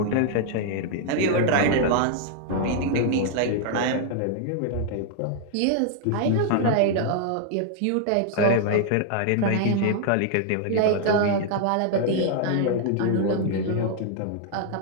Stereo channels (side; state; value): both; different; correlation 0.00